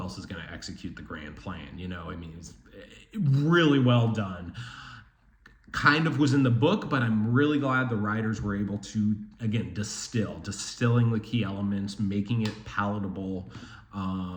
is going to execute the grand plan? It's really well done. Kind of was in the book, but I'm really glad the writers were able to, again, distilling the key elements, making it palatable.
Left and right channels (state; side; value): identical; both; correlation 1.00